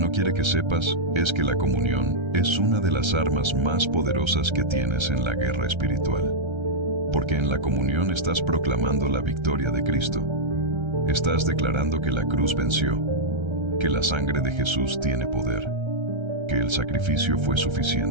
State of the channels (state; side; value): late; left; 1.3 ms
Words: quiere que sepas es que la comunión es una de las armas más poderosas que tienes en la guerra espiritual. Porque en la comunión estás proclamando la victoria de Cristo. Estás declarando que la cruz venció, que la sangre de Jesús tiene poder, que el sacrificio fue